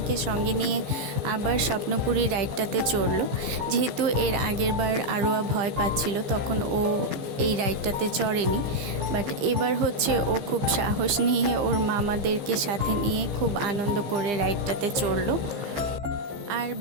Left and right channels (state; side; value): late; left; 15 ms